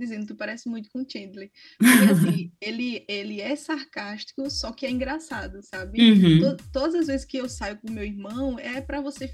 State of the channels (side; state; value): both; identical; correlation 1.00